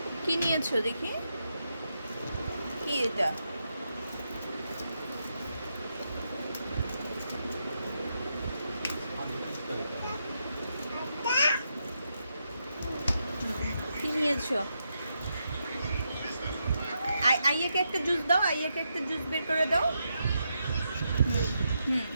কি নিয়েছো দেখি? কি এটা? কি নিয়েছো? আইয়াকে একটা জুস দাও, আইয়াকে একটা জুস বের করে দাও। হুম হুম,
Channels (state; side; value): inverted; both; correlation -0.83